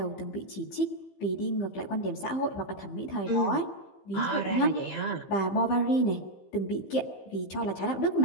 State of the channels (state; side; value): late; right; 15 ms